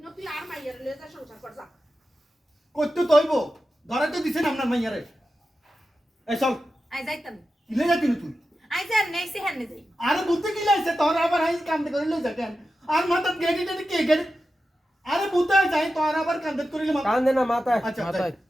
তুই আর মাইয়ার লয়ে যা সংসার কর যা করতে তো হইব ধরে তো দিছেন আপনার মাইয়ারে এই চল আই যাইতাম ইলে যাতি না তুই আই যা নেইছে হেন যাই আরে বুঝতে কি লাইছে তোর আবার হাই কান্দে করে লই যাকেন আর মাথা গেডি টেডি কে গেডি আরে বুঝতে যাই তোর আবার কান্দে করে মাথা কান দে না মাথায় আচ্ছা, মাথায়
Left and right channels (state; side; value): normal; both; correlation 0.92